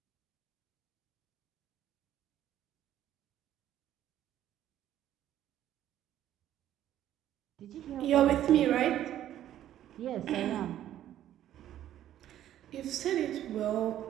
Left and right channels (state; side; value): quieter; left; 12.0 dB